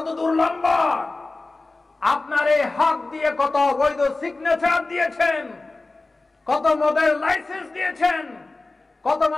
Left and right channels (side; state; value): right; quieter; 3.3 dB